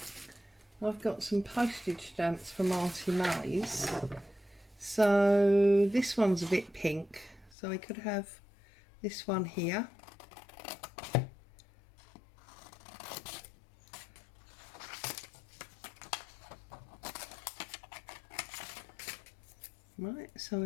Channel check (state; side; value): drops out; right; at 7.6 s